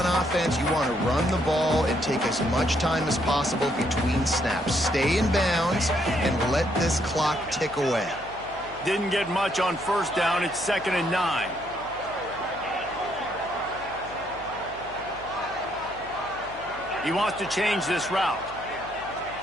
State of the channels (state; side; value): noise; left; hum, 20 dB below the sound